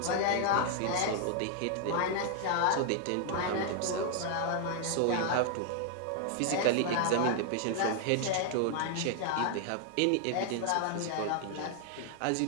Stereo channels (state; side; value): different; both; correlation 0.00